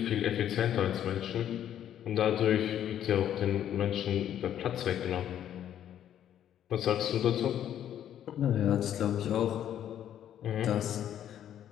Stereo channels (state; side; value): quieter; right; 10.5 dB